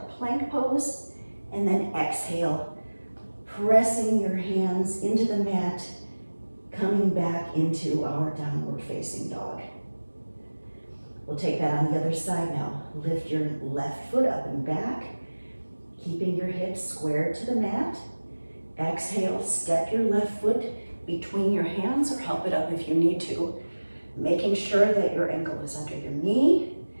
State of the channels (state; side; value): inverted; both; correlation -1.00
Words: plank pose. And then exhale, pressing your hands into the mat, coming back into our downward facing dog. We'll take that on the other side now. Lift your left foot up and back, keeping your hips squared to the mat. Exhale, step your left foot between your hands or help it up if you need to. Making sure that your ankle is under your knee,